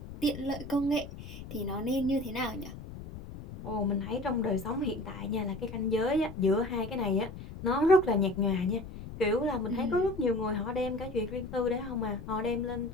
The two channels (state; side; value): noise; left; rumble, 12 dB below the sound